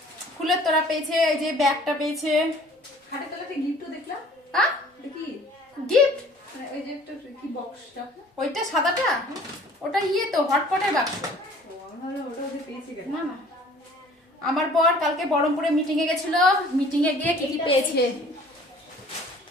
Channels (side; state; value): both; normal; correlation 0.51